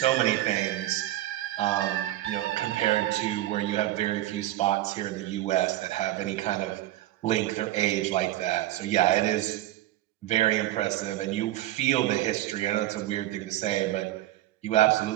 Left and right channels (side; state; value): left; quieter; 14.8 dB